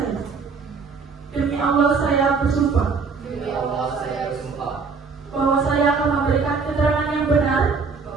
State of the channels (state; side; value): quieter; left; 5.0 dB